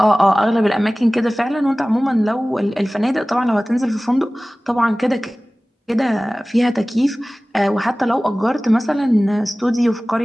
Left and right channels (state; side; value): normal; both; correlation 0.98